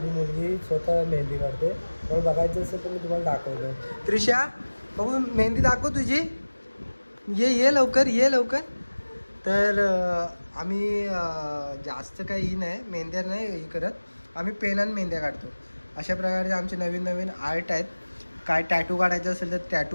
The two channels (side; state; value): both; inverted; correlation -1.00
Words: मुलगी स्वतः मेहंदी काढते. मला बघायचं असेल तर मी तुम्हाला दाखवतो. त्रिशा, बघू मेहंदी दाखव तुझी. ये लवकर, ये लवकर. तर आम्ही जास्त काही ही नाही, मेहंद्या नाही हे करत. आम्ही पेनानं मेहंद्या काढतो. अशा प्रकारे आमचे नवीन नवीन आर्ट आहेत. काय टॅटू काढायचं असेल तर